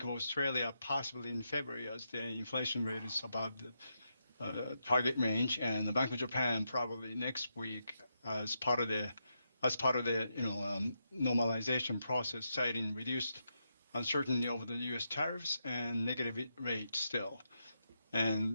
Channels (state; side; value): inverted; both; correlation -0.83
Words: of Australia possibly in February, as the inflation rate is above the target range, and the Bank of Japan probably next week as part of the normalization process, citing reduced uncertainty over the U.S. tariffs and negative rates still.